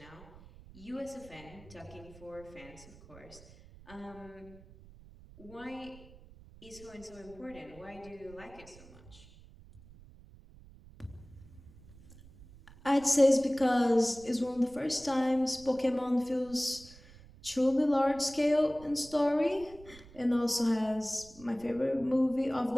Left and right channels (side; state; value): right; noise; rumble, 21 dB below the sound